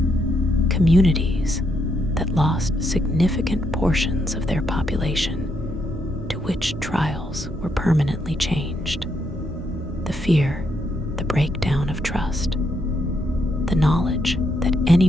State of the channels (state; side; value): normal; both; correlation 0.77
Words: Communities that lost significant portions of their population to witch trials were permanently changed. The fear, the breakdown of trust, the knowledge that